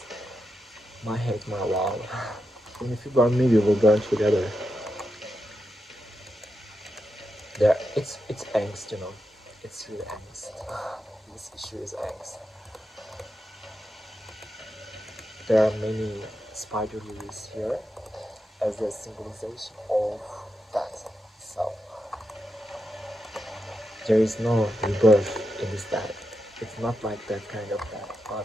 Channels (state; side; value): normal; both; correlation 0.87